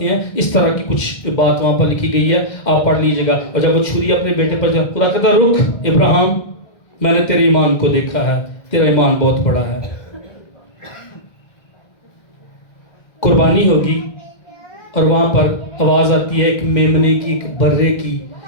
ہیں۔ اس طرح کی کچھ بات وہاں پر لکھی گئی ہے، آپ پڑھ لیجئے گا۔ اور جب وہ چھری اپنے بیٹے پر جب، خدا کہتا رک ابراہیم، میں نے تیرے ایمان کو دیکھا ہے، تیرا ایمان بہت بڑا ہے۔ قربانی ہوگی، اور وہاں پر آواز آتی ہے ایک میمنے کی، ایک برے کی،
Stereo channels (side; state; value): right; late; 2.0 ms